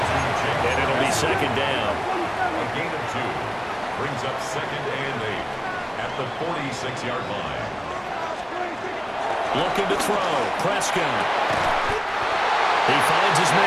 And it'll be 2nd down. A gain of 2 brings up 2nd and 8 at the 46-yard line. Looking to throw. Prescott. He finds his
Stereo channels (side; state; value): both; identical; correlation 1.00